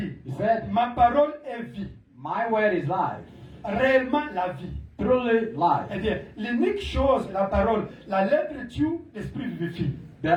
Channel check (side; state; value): both; identical; correlation 1.00